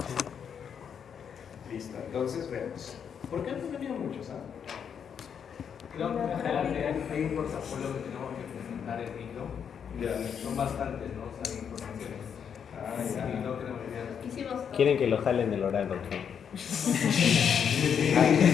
Listo. Entonces vemos. ¿Por qué han venido muchos? Creo que en general hay un portafolio que tenemos que presentar en micro. Ya. Son bastantes, ¿no? O sea, informaciones. Ya. Y no queremos olvidar. Quieren que lo jalen del oral, doctor.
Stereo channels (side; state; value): right; quieter; 7.6 dB